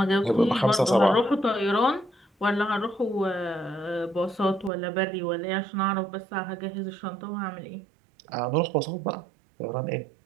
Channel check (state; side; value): drops out; left; at 4.7 s